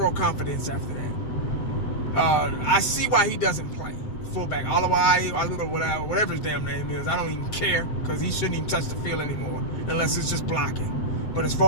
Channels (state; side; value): late; right; 7.7 ms